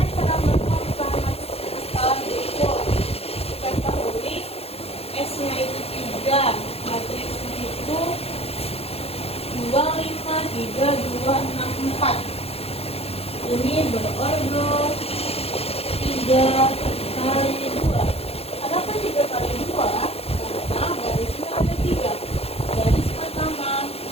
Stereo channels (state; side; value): late; right; 0.29 ms